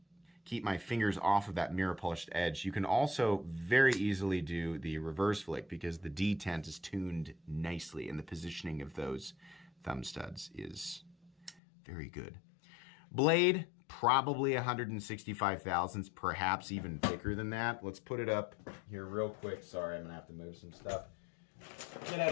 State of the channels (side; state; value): right; drops out; at 11.6 s